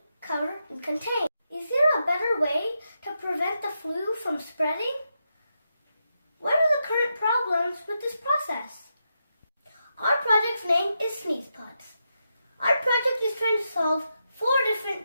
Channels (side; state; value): both; inverted; correlation -0.85